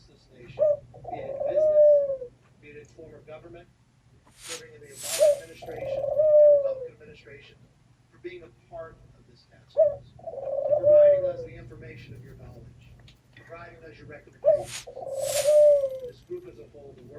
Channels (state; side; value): identical; both; correlation 1.00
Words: this nation, be it in business, be it in former government, serving in the Obama administration, the Republican administration, for being a part of this task force, for providing us the information of your knowledge, providing us your recommendations. This group as a whole, the